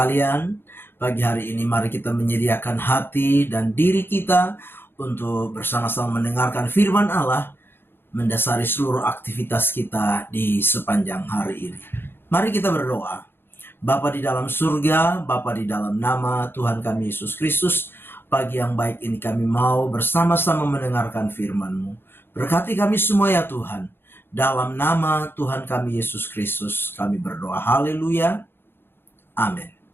Pagi hari ini mari kita menyediakan hati dan diri kita untuk bersama-sama mendengarkan firman Allah, mendasari seluruh aktivitas kita di sepanjang hari ini. Mari kita berdoa. Bapa di dalam surga, Bapa di dalam nama Tuhan kami Yesus Kristus, pagi yang baik ini kami mau bersama-sama mendengarkan firman-Mu. Berkati kami semua ya Tuhan. Dalam nama Tuhan kami Yesus Kristus kami berdoa. Haleluya. Amin.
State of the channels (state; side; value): late; right; 0.10 ms